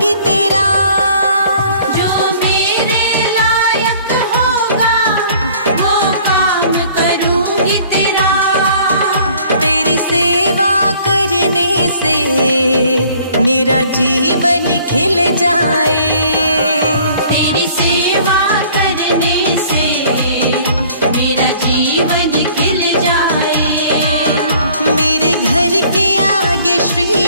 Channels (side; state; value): both; inverted; correlation -0.54